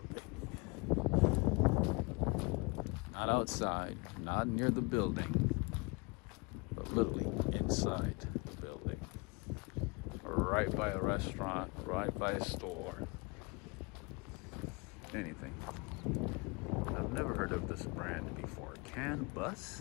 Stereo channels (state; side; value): quieter; right; 28.8 dB